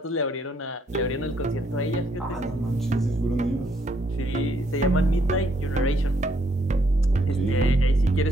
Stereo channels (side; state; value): both; normal; correlation 0.71